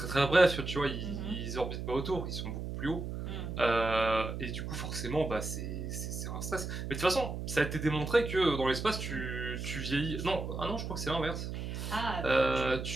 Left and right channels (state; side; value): noise; right; hum, 5 dB below the sound